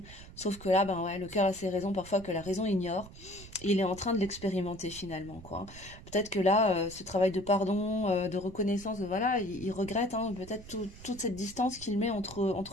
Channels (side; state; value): right; noise; rumble, 17 dB below the sound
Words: Sauf que là ben ouais le cœur a ses raisons parfois que la raison ignore. Et il est en train de l'expérimenter finalement quoi. Peut-être que là ce travail de pardon, de reconnaissance, voilà il regrette hein, peut-être toute cette distance qu'il met